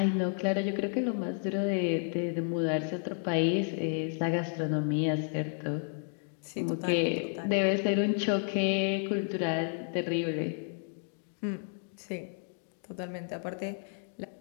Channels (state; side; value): silent; right; 57 dB below the other